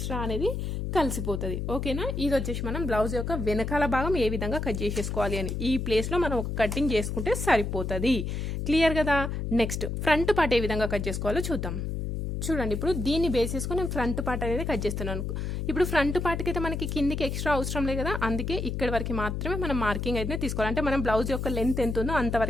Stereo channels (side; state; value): left; noise; hum, 3 dB below the sound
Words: అనేది కలిసిపోతుంది. ఓకేనా, ఇది వచ్చేసి మనం బ్లౌజ్ యొక్క వెనకాల భాగం ఏ విధంగా కట్ చేసేసుకోవాలి అని ఈ ప్లేస్లో మనం ఒక కటింగ్ చేసుకుంటే సరిపోతుంది. క్లియర్ కదా. నెక్స్ట్ ఫ్రంట్ పార్ట్ ఏ విధంగా కట్ చేసుకోవాలో చూద్దాం. చూడండి, ఇప్పుడు దీన్ని బేస్ చేసుకుని నేను ఫ్రంట్ పార్ట్ అనేది కట్ చేస్తున్నాను. ఇప్పుడు ఫ్రంట్ పార్ట్కి అయితే మనకి కిందికి ఎక్స్ట్రా అవసరం లేదు కదా, అందుకే ఇక్కడ వరకు మాత్రమే మనం మార్కింగ్ అయితే తీసుకోవాలి. అంటే మనం బ్లౌజ్ యొక్క లెంత్ ఎంత ఉందో